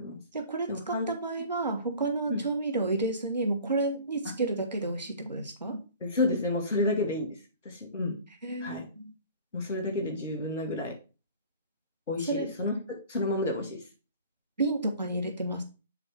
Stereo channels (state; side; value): inverted; both; correlation -0.43